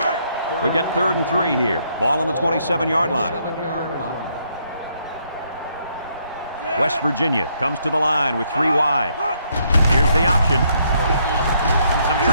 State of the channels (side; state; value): both; inverted; correlation -0.72